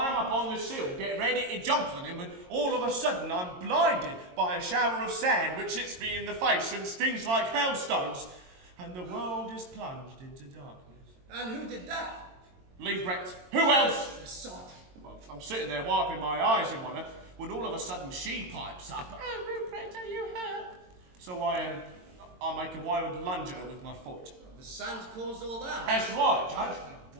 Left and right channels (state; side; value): late; left; 22 ms